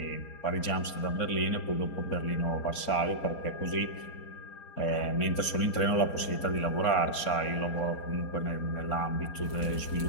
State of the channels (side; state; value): right; late; 4.3 ms